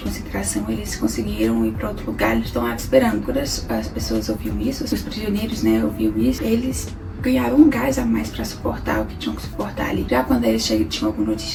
eles conseguiram ir pra outro lugar, eles estão lá esperando. Quando as pessoas ouviam isso, os prisioneiros, né, ouviam isso, eles ganhavam um gás a mais pra suportar o que tinham que suportar ali. Já quando eles tinham alguma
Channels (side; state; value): both; identical; correlation 1.00